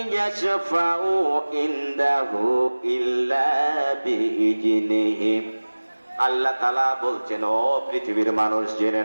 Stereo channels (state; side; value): inverted; both; correlation -1.00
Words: ইয়াশফাউ ইনদাহু ইল্লা বিইজনিহি। আল্লাহ তাআলা বলছেন, ও পৃথিবীর মানুষ জেনে